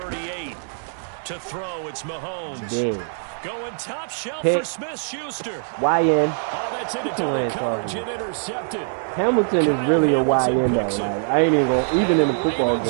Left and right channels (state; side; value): silent; left; digital silence